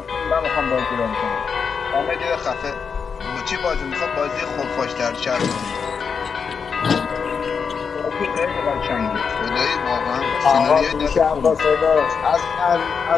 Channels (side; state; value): right; quieter; 6.0 dB